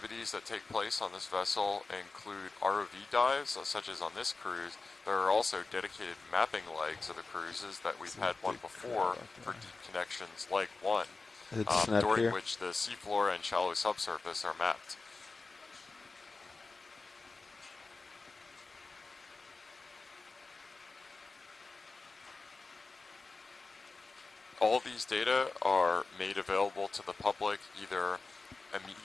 that take place on this vessel include ROV dives, such as on this cruise. There are also dedicated mapping legs of the cruises that we've had one before for deep connections, leg 1, It's not during here. which the seafloor and shallow subsurface are mapped. All these data are made available to the public either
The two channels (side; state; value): right; quieter; 3.8 dB